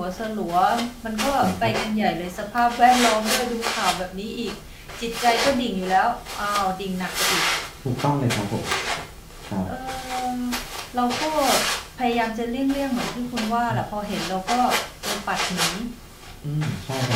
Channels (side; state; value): both; identical; correlation 1.00